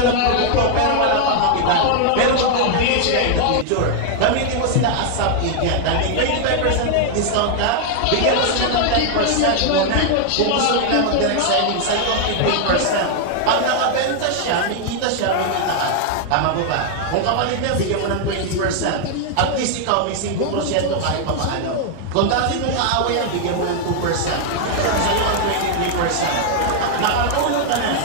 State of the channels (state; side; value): different; both; correlation 0.00